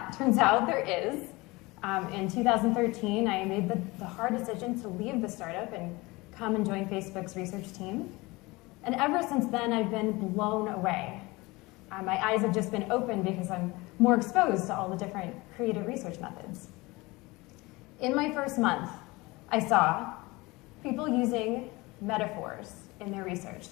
out, there is. In 2013, I made the hard decision to leave the startup and come and join Facebook's research team. And ever since then, I've been blown away. My eyes have just been opened because I'm more exposed to all the different creative research methods. In my first month, I saw people using metaphors in their research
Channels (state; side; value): quieter; right; 22.8 dB